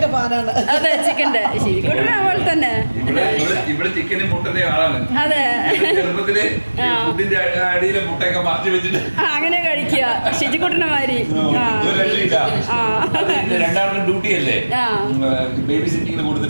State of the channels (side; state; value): both; inverted; correlation -1.00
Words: അതെ ചിക്കൻ്റെ ശരിക്കൂട്ടിനെ പോലെ തന്നെ. ഇവിടെ ചിക്കനും മുട്ടന്റെ ആളാണ്. അതെ ചെറുപ്പത്തില് ഫുഡിന്റെ അടിയിലെ മുട്ടയൊക്കെ മറച്ചു വെച്ചിട്ട് അങ്ങനെ കഴിക്കുക ശിജിക്കുട്ടനെ മാതിരി. രണ്ടാമത്തെ ഡ്യൂട്ടി അല്ലേ, ബേബി സിറ്റിങ്ങിന്